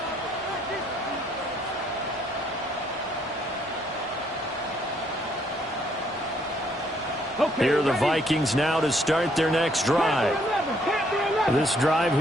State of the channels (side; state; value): both; normal; correlation 0.68